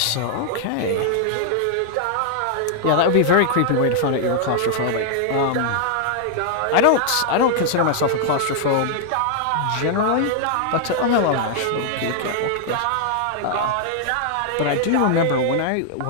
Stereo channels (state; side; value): different; both; correlation 0.00